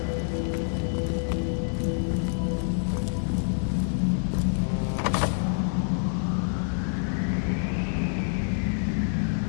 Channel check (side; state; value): right; silent; digital silence